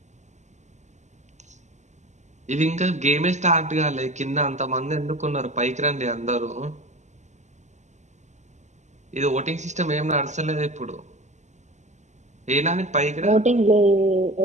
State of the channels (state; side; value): late; left; 0.34 ms